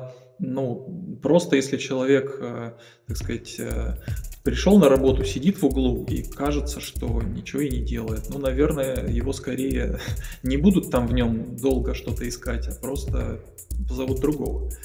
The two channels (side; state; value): both; identical; correlation 1.00